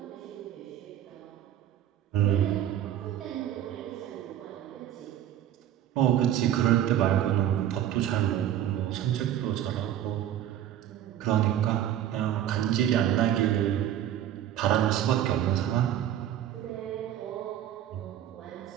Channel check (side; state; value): left; quieter; 11.2 dB